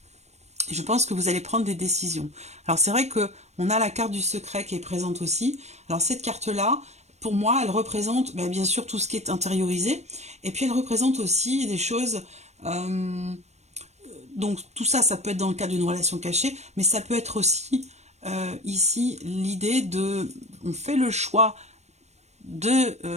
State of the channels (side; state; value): left; late; 0.32 ms